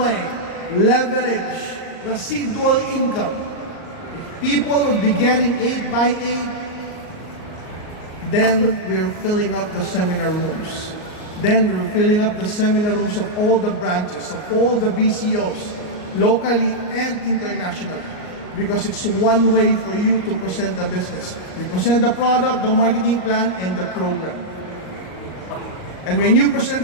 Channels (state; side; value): late; right; 38 ms